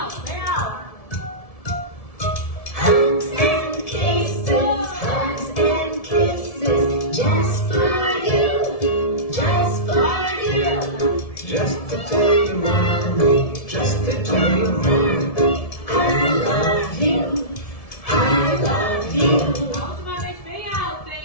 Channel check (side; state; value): right; late; 1.7 ms